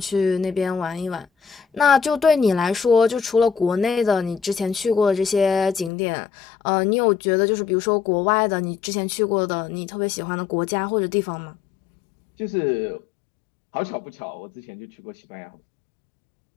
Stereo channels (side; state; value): right; drops out; at 5.9 s